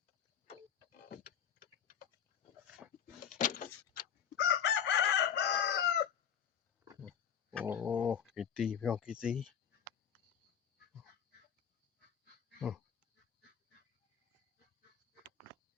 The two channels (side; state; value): right; quieter; 8.3 dB